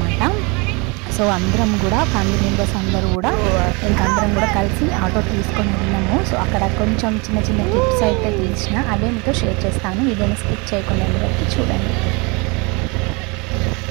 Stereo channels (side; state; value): left; quieter; 28.9 dB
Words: సో అందరం కూడా ఫ్యామిలీ మెంబర్స్ అందరూ కూడా అందరం కూడా కలిసి ఆటో తీసుకొని వెళ్ళాము. సో అక్కడ కొంచెం చిన్న చిన్న క్లిప్స్ అయితే తీసిన అవే మీతో షేర్ చేస్తాను. వీడియోని స్కిప్ చేయకుండా వరకు చూడండి.